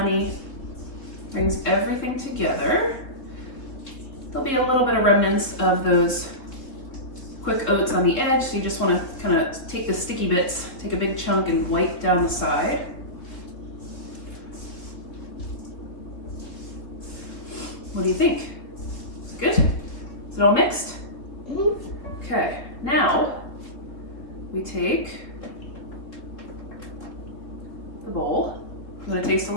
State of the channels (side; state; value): right; late; 3.7 ms